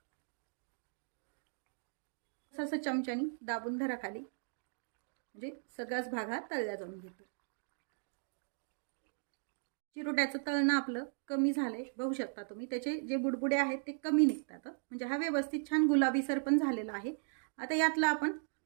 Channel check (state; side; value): silent; left; digital silence